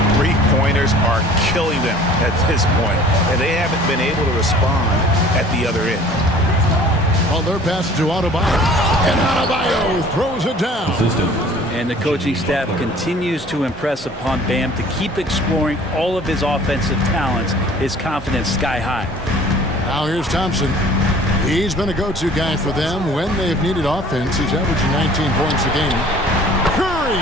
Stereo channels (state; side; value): normal; both; correlation 0.50